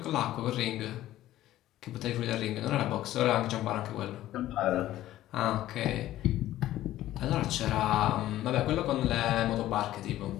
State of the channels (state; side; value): quieter; right; 14.2 dB